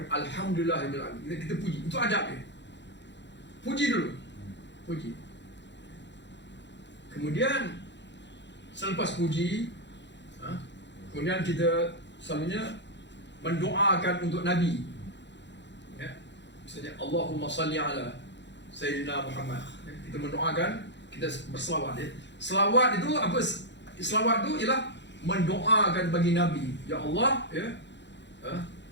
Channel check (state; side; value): late; right; 0.52 ms